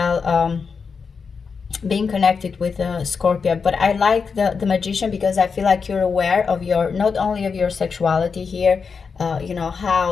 being connected with Scorpio, but I like the Magician because I feel like you're aware of your, not only of your sexuality here, you know,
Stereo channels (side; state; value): right; quieter; 5.5 dB